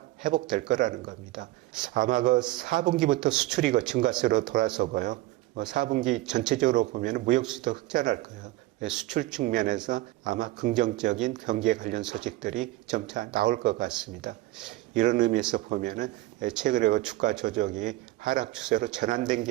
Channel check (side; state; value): left; quieter; 17.7 dB